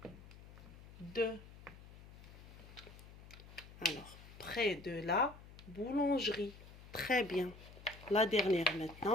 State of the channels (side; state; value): left; noise; hum, 17 dB below the sound